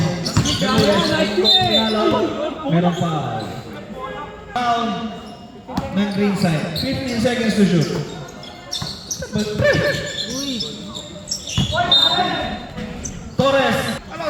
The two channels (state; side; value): identical; both; correlation 1.00